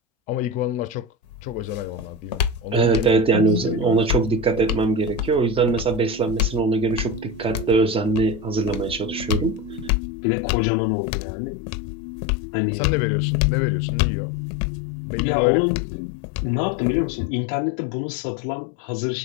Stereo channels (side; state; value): right; drops out; at 9.9 s